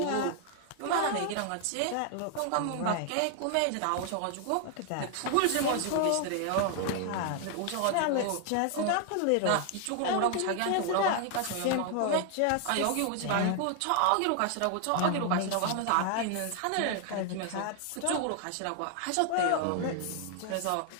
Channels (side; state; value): both; different; correlation 0.00